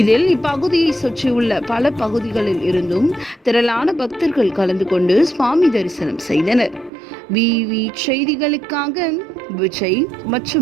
இதில் இப்பகுதியை சுற்றியுள்ள பல பகுதிகளில் இருந்தும் திரளான பக்தர்கள் கலந்து கொண்டு சுவாமி தரிசனம் செய்தனர். விவி செய்திகளுக்காக விஜய்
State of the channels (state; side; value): drops out; left; at 6.9 s